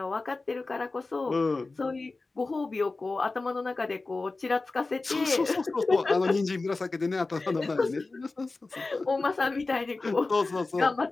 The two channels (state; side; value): quieter; right; 3.5 dB